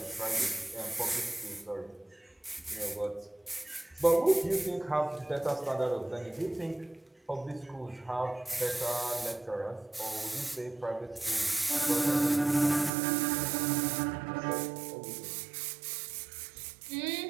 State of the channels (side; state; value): left; drops out; at 12.9 s